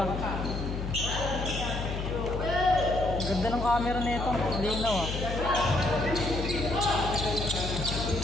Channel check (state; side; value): noise; left; hum, 4 dB below the sound